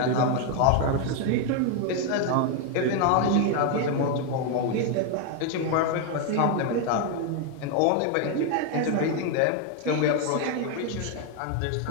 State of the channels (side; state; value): both; different; correlation 0.01